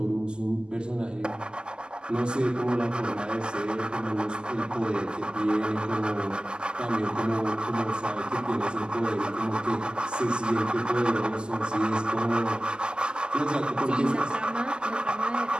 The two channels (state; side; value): late; left; 0.047 ms